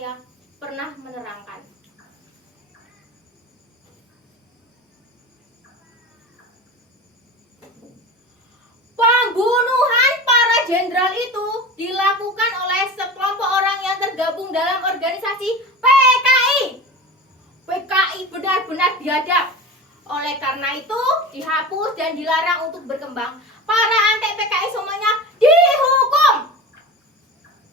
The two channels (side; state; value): both; normal; correlation 0.31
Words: pernah menerangkan. Pembunuhan para jenderal itu dilakukan oleh sekelompok orang yang tergabung dalam organisasi PKI. PKI benar-benar biadab. Oleh karena itu dihapus dan dilarang untuk berkembang. Para antek PKI semuanya dihukum.